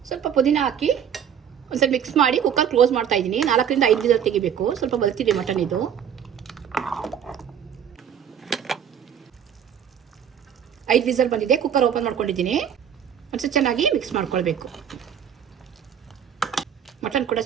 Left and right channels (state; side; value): quieter; left; 8.6 dB